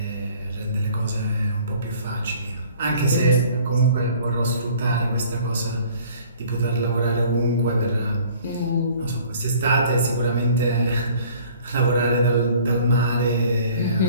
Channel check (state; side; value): inverted; both; correlation -0.53